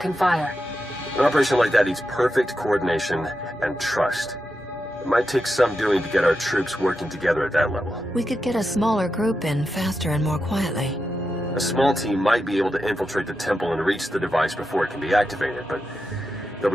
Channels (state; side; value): normal; both; correlation 0.88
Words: fire. An operation like that needs perfect coordination and trust. It might take some doing to get our troops working together at that level. We could get a smaller group in faster and more quietly. A small team might be able to infiltrate the temple and reach the device before it can be activated, but they'll